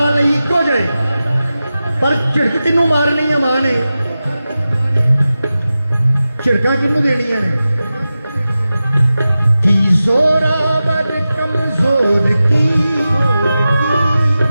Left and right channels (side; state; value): both; inverted; correlation -0.94